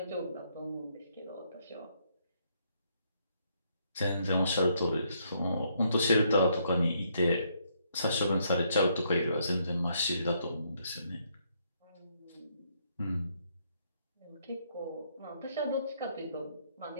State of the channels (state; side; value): inverted; both; correlation -0.72